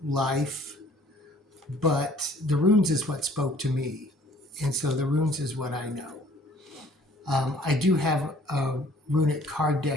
life. But the runes is what spoke to me. And so the runes is what I know. I do have a runic card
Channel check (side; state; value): both; normal; correlation 0.56